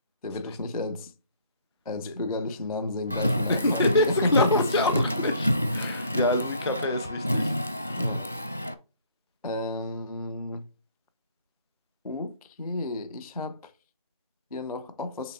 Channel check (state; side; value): inverted; both; correlation -0.59